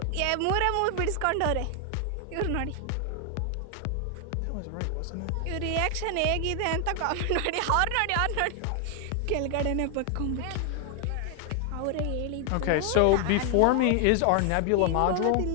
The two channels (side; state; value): both; different; correlation 0.00